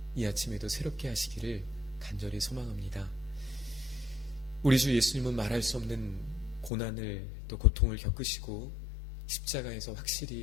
이 아침에도 새롭게 하시기를 간절히 소망합니다. 우리 주 예수님은 말할 수 없는 고난을 또 고통을 겪으시고 십자가에서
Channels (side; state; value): right; drops out; at 6.7 s